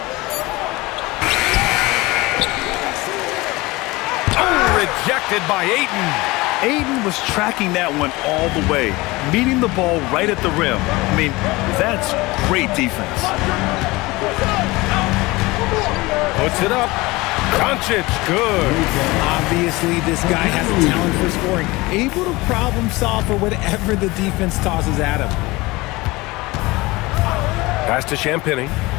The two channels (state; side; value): quieter; right; 21.9 dB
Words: Oh, rejected by Ayton. Ayton was tracking that one all the way, meeting the ball right at the rim. I mean, that's great defense. Puts it up. Doncic, good. Obviously, this guy has a talent for scoring. Able to problem solve for whatever the defense tosses at him. Pass to Champagnie.